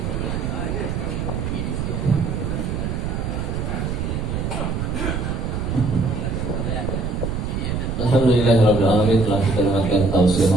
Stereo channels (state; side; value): noise; right; rumble, 2 dB below the sound